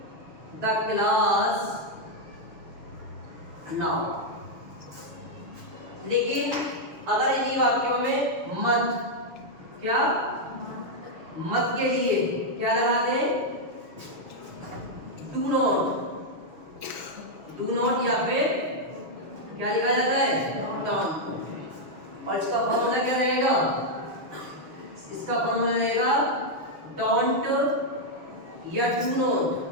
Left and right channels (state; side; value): late; left; 6.7 ms